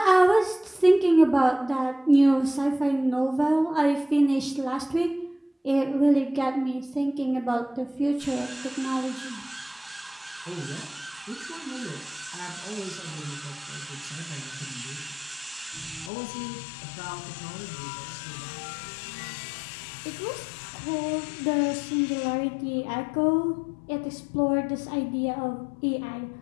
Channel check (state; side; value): drops out; right; at 16.1 s